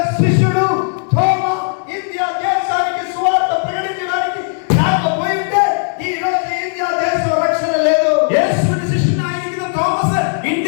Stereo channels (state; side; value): silent; right; 66 dB below the other